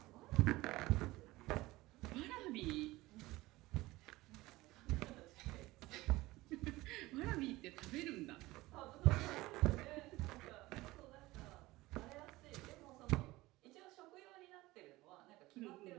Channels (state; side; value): quieter; left; 19.2 dB